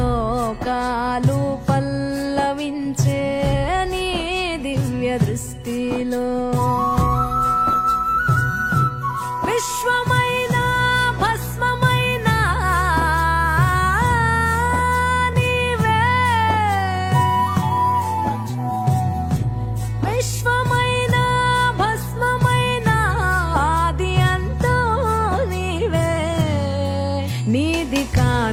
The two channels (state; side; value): identical; both; correlation 1.00